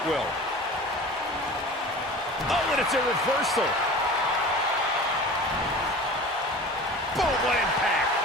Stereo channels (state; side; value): normal; both; correlation 0.38